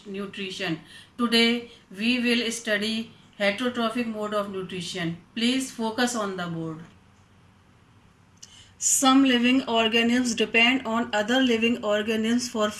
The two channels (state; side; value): identical; both; correlation 1.00